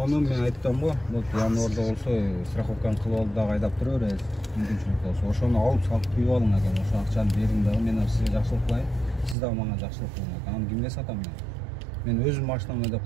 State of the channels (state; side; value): drops out; left; at 9.3 s